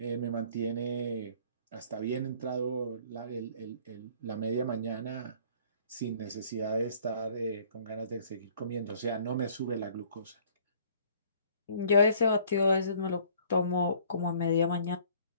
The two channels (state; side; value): inverted; both; correlation -0.55